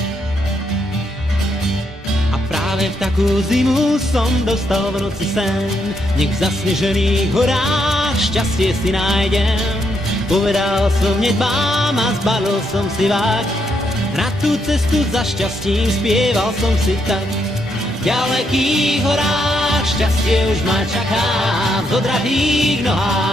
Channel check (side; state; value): both; normal; correlation 0.77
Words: A práve v takú zimu som dostal v noci sen, nech v zasnežených horách šťastie si nájdem. Povedal som nedbám a zbalil som si vák, na tú cestu za šťastím spieval som si tak. V ďalekých horách šťastie už ma čaká, v odratých